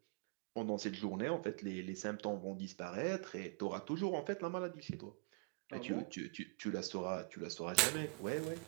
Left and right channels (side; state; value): left; quieter; 30.1 dB